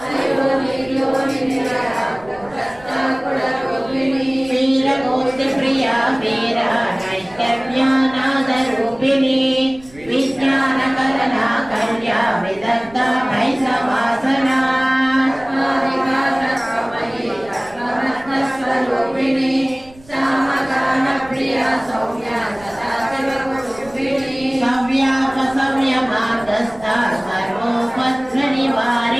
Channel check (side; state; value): right; noise; rumble, 24 dB below the sound